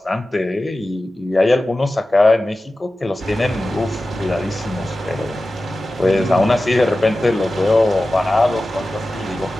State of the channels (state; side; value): normal; both; correlation 0.95